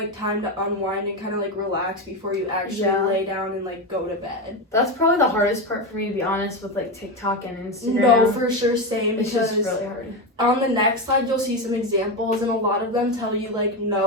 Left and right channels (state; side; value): normal; both; correlation 0.14